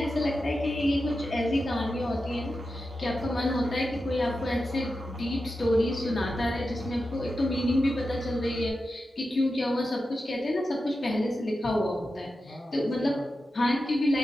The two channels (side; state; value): both; normal; correlation 0.91